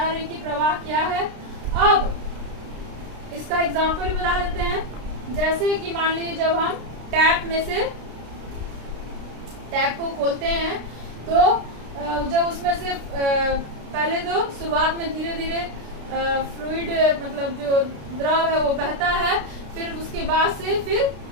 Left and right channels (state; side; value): late; left; 32 ms